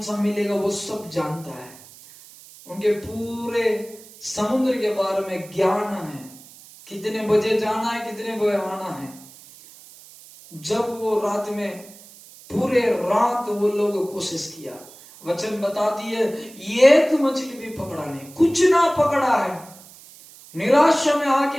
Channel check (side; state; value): right; noise; hiss, 21 dB below the sound